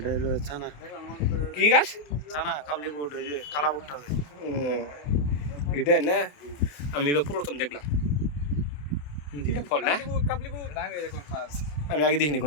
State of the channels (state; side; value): late; right; 28 ms